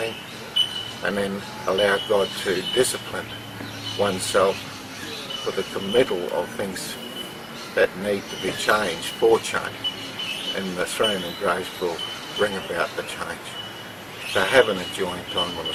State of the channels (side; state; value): both; identical; correlation 1.00